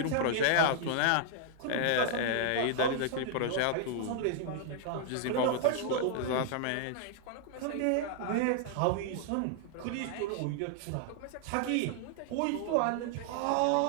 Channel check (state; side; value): different; both; correlation 0.00